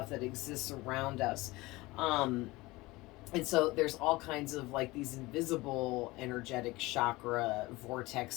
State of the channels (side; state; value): right; quieter; 21.0 dB